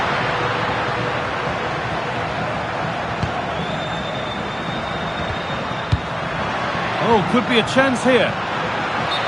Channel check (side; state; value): both; identical; correlation 1.00